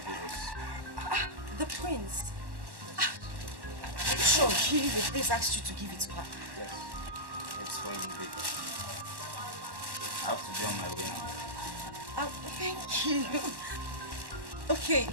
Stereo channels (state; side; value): late; left; 1.1 ms